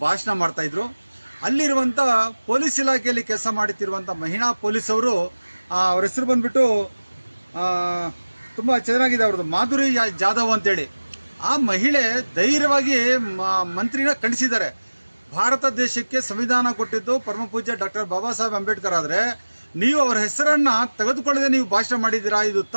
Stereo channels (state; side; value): inverted; both; correlation -1.00